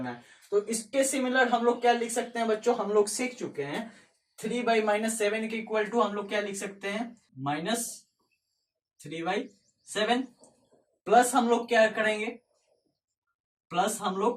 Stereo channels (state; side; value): identical; both; correlation 1.00